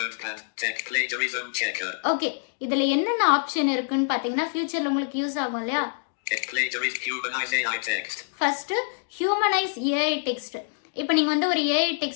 ஓகே, இதுல என்னென்ன ஆப்ஷன் இருக்குன்னு பாத்தீங்கன்னா ஃபியூச்சர்ல உங்களுக்கு யூஸ் ஆகும் இல்லையா? First humanise AI text. இப்போ நீங்க வந்து ஒரு ஏஐ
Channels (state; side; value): silent; right; digital silence